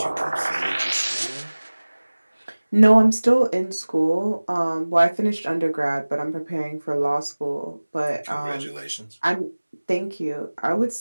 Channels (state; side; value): inverted; both; correlation -1.00